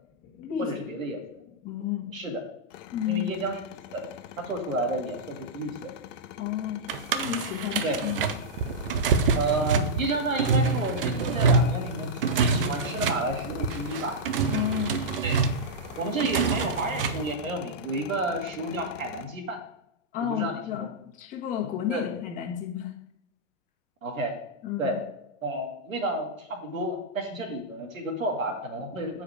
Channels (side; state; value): both; normal; correlation -0.08